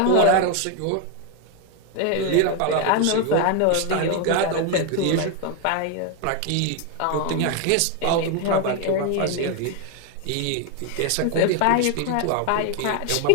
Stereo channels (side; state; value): both; different; correlation 0.01